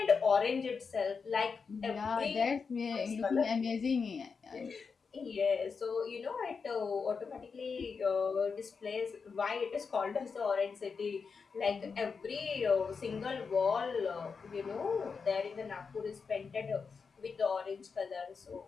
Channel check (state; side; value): quieter; right; 5.3 dB